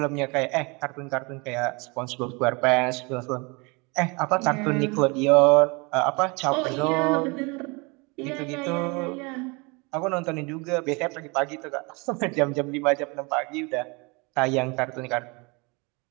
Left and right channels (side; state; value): left; quieter; 28.7 dB